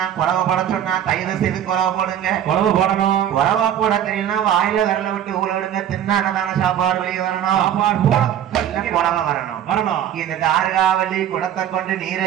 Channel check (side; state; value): left; quieter; 10.3 dB